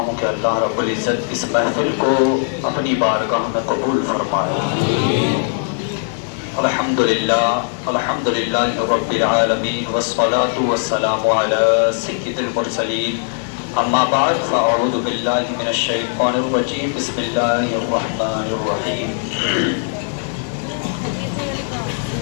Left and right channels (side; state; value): right; silent; digital silence